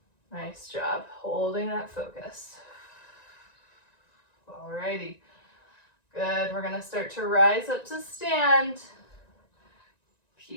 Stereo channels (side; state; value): right; late; 1.9 ms